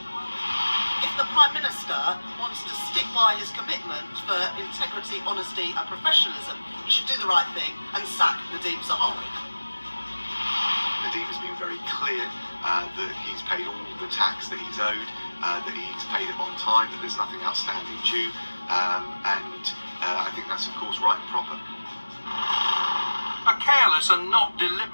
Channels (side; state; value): both; inverted; correlation -1.00